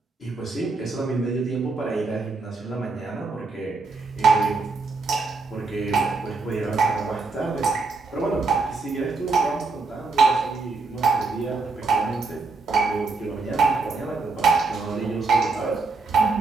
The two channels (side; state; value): left; quieter; 4.0 dB